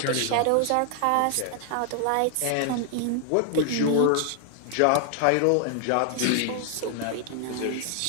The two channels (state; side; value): different; both; correlation 0.00